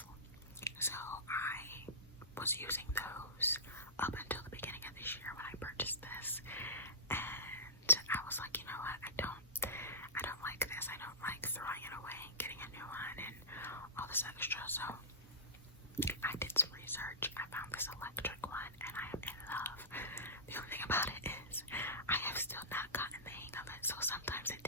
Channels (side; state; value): both; normal; correlation -0.19